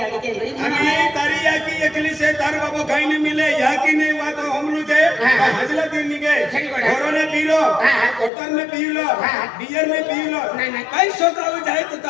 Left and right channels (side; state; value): right; drops out; at 8.3 s